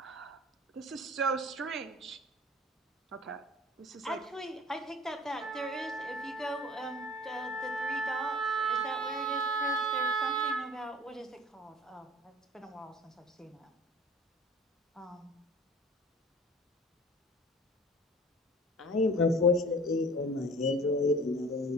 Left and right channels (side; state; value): both; normal; correlation 0.45